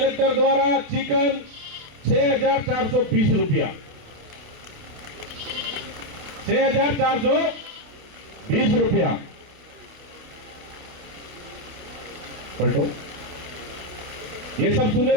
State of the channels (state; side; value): late; left; 28 ms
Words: द्वारा चिकन 6420 रुपया, 6420 रुपया। पलटो, ये सब सुने